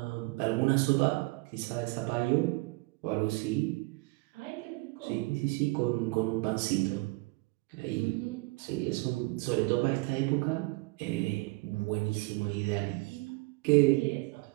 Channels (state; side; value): quieter; left; 24.8 dB